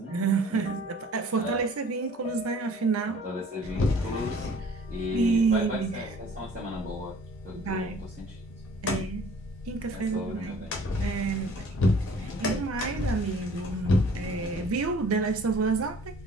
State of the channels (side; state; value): both; normal; correlation 0.52